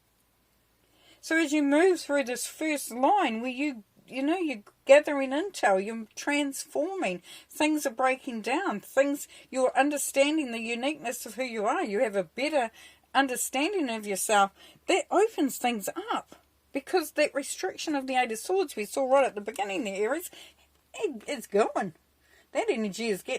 So as you move through this first line where you're gathering intel, you're transforming, things are breaking down, you're understanding the uniqueness of who you are, you have a better understanding of yourself, that opens things up. Because that restriction of the Eight of Swords we saw right at the beginning there, Aries, it's going. That energy is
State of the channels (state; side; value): identical; both; correlation 1.00